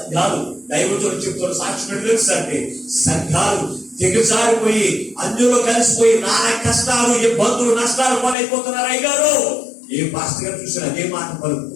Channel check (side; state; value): right; drops out; at 8.3 s